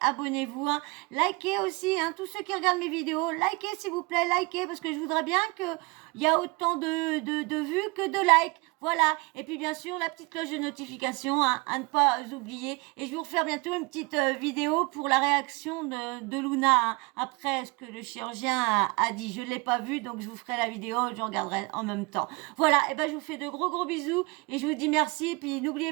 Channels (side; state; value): left; quieter; 27.3 dB